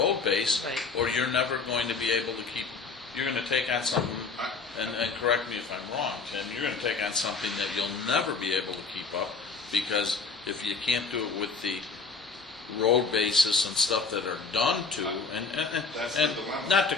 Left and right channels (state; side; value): quieter; right; 4.6 dB